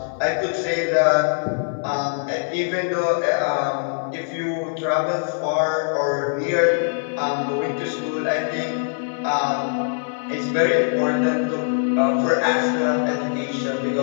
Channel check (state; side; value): silent; right; 58 dB below the other